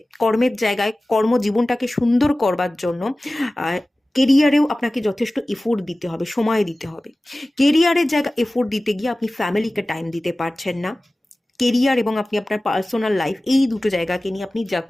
কর্মের জায়গায় কর্মজীবনটাকে সুন্দর করবার জন্য কেরিয়ারেও আপনাকে যথেষ্ট এফোর্ট দিতে হবে, সময় দিতে হবে। কেরিয়ারের জায়গায় এফোর্ট দিতে গিয়ে আপনি ফ্যামিলিকে টাইম দিতে পারছেন না। কেরিয়ার এবং আপনি আপনার পার্সোনাল লাইফ, এই দুটো জায়গাকে নিয়ে আপনি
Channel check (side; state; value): both; normal; correlation 0.97